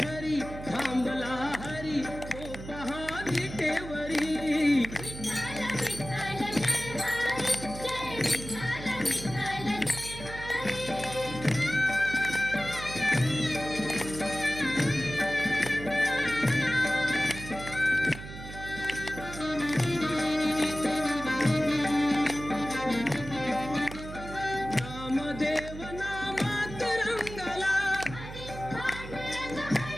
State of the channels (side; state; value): right; noise; hum, 11 dB below the sound